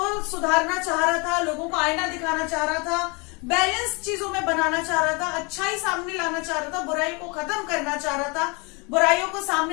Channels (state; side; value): quieter; right; 29.9 dB